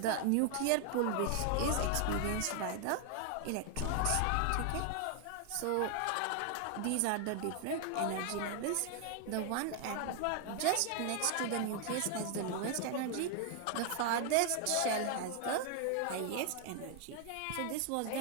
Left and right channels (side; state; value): both; different; correlation 0.00